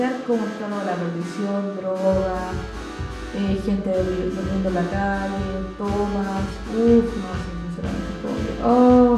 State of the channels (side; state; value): both; identical; correlation 1.00